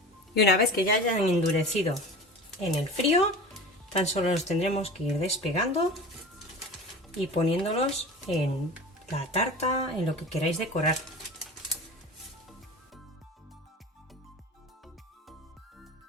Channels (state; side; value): normal; both; correlation 0.35